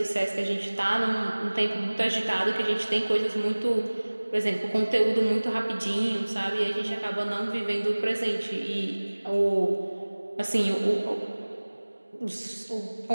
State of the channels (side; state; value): both; inverted; correlation -1.00